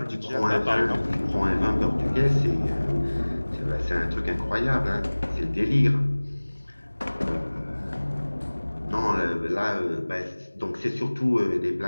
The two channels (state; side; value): inverted; both; correlation -1.00